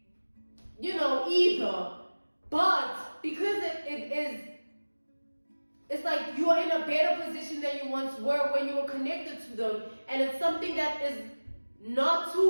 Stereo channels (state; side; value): inverted; both; correlation -1.00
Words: either. But because it's like you are in a better position than you once were when you were connected to them. And it's something that is not